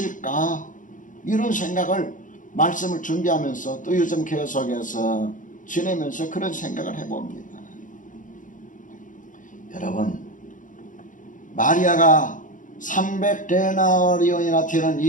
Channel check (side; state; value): right; late; 0.38 ms